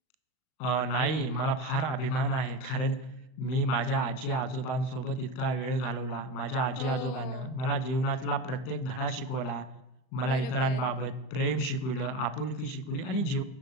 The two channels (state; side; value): late; right; 39 ms